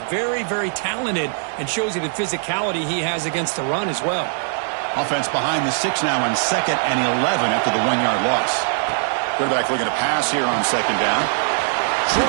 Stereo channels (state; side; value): silent; left; 62 dB below the other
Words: very, very talented and shows you the physicality he has against the run as well. Offense behind the 6 now on 2nd and 11 after the 1-yard loss. Quarterback looking to pass here on 2nd down.